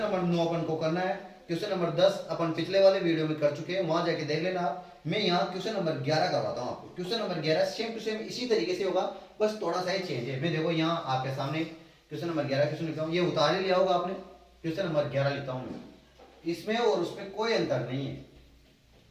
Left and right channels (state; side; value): identical; both; correlation 1.00